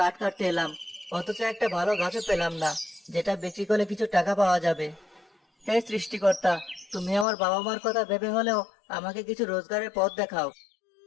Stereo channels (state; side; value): drops out; right; at 7.2 s